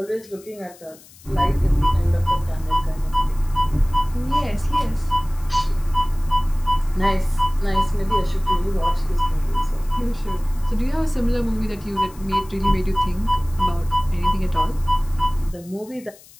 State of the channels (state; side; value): noise; left; hiss, 23 dB below the sound